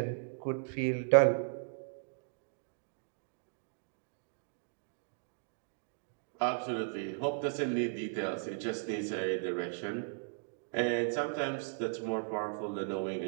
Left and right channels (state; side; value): silent; left; digital silence